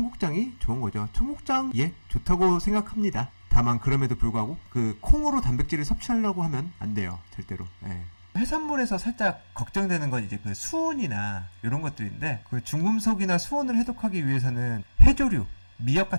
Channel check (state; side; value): inverted; both; correlation -1.00